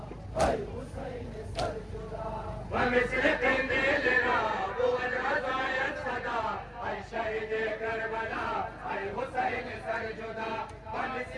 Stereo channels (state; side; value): identical; both; correlation 1.00